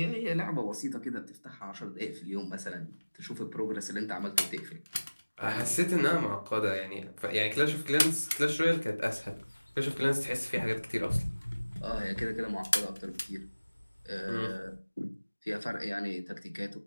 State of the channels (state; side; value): inverted; both; correlation -1.00